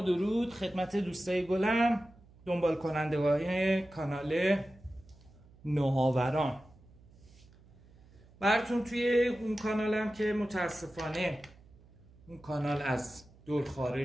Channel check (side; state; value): right; noise; hum, 25 dB below the sound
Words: درود خدمت دوستای گلم، دنبال کنندگان کانال نوآوران. براتون توی اون کانالم که متاسفانه اون کانال از دور